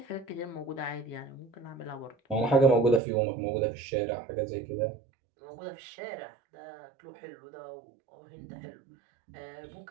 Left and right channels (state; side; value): drops out; left; at 3.0 s